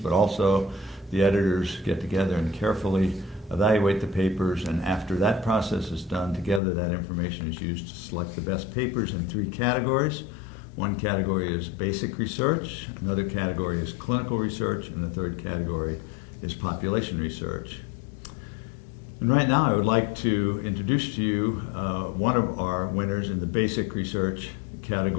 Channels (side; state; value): right; drops out; at 6.6 s